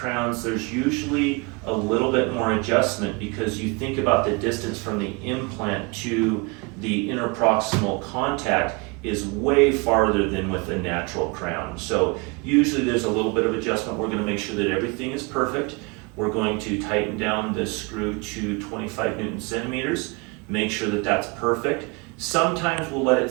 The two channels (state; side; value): quieter; left; 28.7 dB